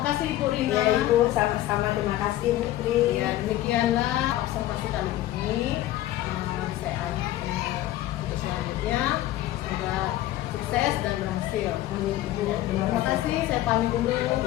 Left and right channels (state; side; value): quieter; right; 14.6 dB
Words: Ibu Rina. Ya Ibu, sama-sama, terima kasih Bu Tri. Ya, demikianlah observasi kali ini. Saya untuk selanjutnya semoga sukses dan berhasil. Amin Ibu. Terima kasih. Saya pamit dulu.